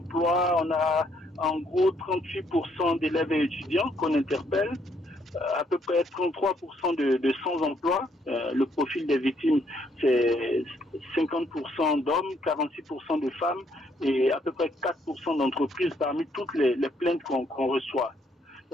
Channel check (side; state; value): both; normal; correlation 0.70